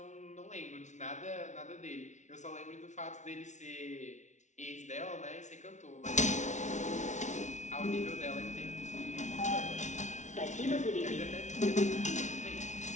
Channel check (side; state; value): right; late; 0.35 ms